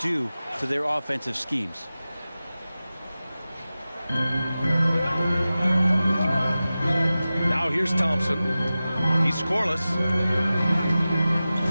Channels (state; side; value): inverted; both; correlation -0.96